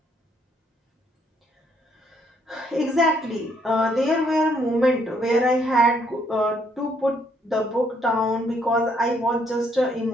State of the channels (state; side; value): normal; both; correlation 0.70